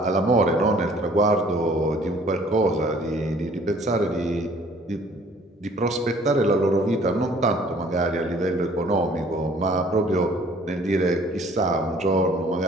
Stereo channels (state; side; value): normal; both; correlation 0.56